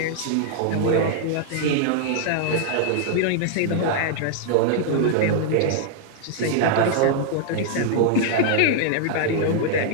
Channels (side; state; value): both; different; correlation 0.00